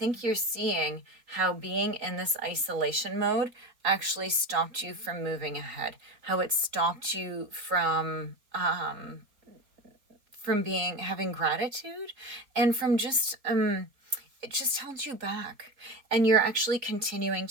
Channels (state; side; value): late; left; 4.3 ms